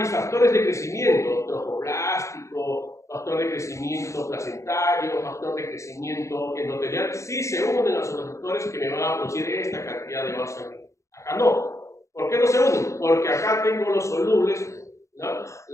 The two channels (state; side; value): late; right; 0.15 ms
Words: factores de crecimiento, trofoblástico, factor de crecimiento placentario, factor de crecimiento endotelial, sí se unen a los receptores que me van a producir esta cantidad de vasos sanguíneos. Acá no. ¿Por qué no se unen? Porque acá tengo los solubles, ¿no?